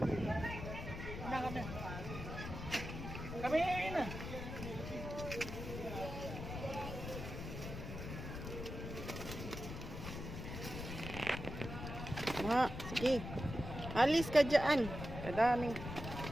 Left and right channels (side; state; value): left; noise; rumble, 7 dB below the sound